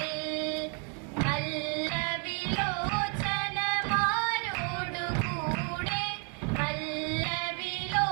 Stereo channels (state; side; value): quieter; left; 39.5 dB